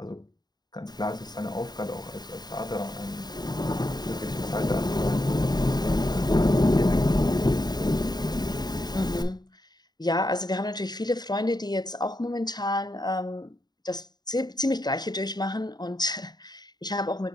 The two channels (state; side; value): late; right; 0.20 ms